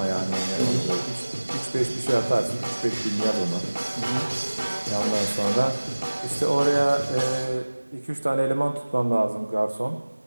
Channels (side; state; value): both; inverted; correlation -1.00